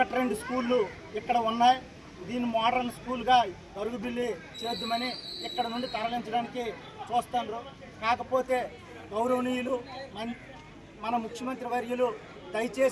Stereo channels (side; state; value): both; identical; correlation 1.00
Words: స్కూళ్ళు ఇక్కడ ఉన్నాయి. దీన్ని మోడర్న్ స్కూల్గా గరుగుబిల్లి చేద్దామని ఇక్కడ నుండి తరలించడానికి చూస్తున్నారు. కాకపోతే గౌరవనీయులు మన ముఖ్యమంత్రి వర్యులు